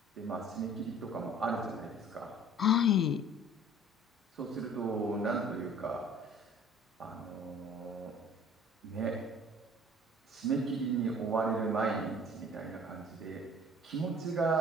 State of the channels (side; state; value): both; normal; correlation 0.50